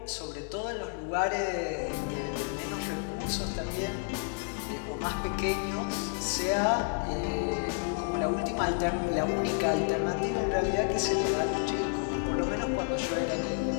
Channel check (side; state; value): right; quieter; 34.9 dB